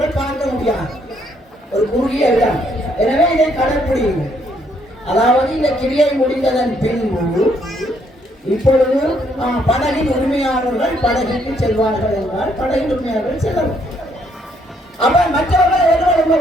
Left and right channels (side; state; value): both; normal; correlation 0.70